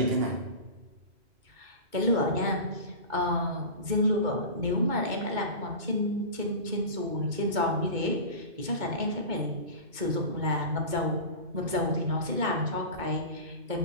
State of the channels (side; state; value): left; late; 2.2 ms